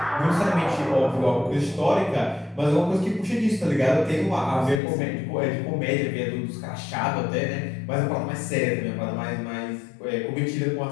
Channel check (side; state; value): right; drops out; at 4.8 s